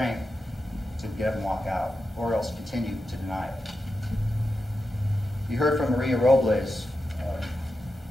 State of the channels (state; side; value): normal; both; correlation 0.89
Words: to get up and walk out, or else continue to deny it. You heard from Maria Robles,